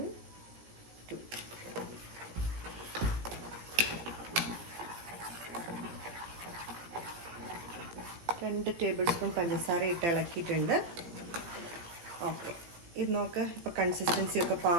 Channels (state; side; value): late; left; 17 ms